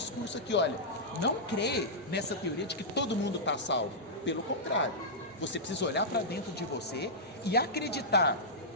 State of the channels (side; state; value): both; normal; correlation -0.12